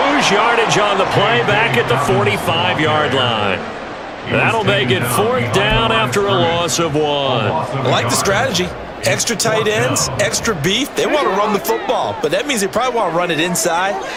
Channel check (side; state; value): both; identical; correlation 1.00